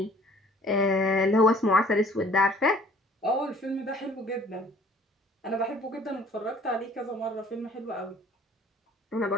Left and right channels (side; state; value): both; normal; correlation 0.54